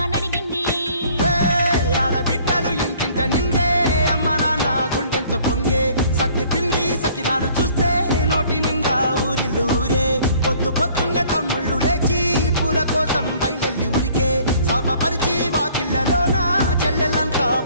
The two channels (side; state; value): both; inverted; correlation -0.56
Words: నడిగింది ఆడబిడ్డలు ఇంటింట నిందే అమ్మ నాన్న గుండెంతో పొంగే సత్తి పిండి సకినాలు చూస్తే నోటి నిండా ఊరిల్లూరే పొద్దు పొద్దున్నే తమ్ముళ్ళు లేచి పూల కోసం బయలెల్లి ఉరికే శాపపరిచి వాకిళ్ళలోన చెల్లెళ్ళంతా